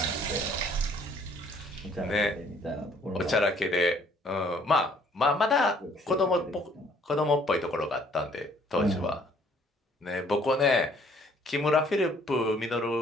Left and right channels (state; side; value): normal; both; correlation 0.61